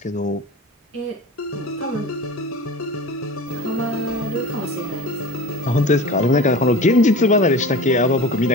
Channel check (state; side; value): normal; both; correlation 0.35